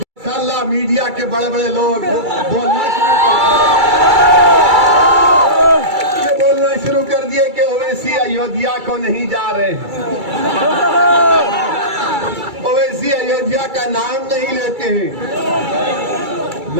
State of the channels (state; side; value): late; left; 2.3 ms